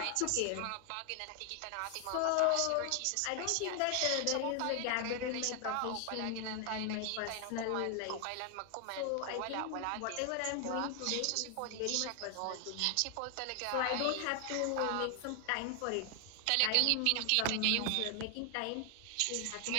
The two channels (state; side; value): different; both; correlation 0.00